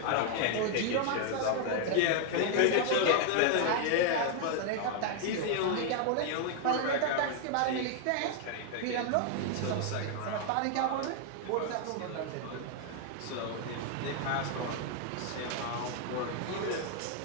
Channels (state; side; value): different; both; correlation 0.00